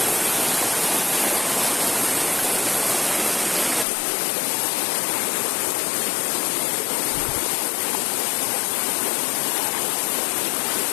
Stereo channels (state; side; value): drops out; right; at 3.9 s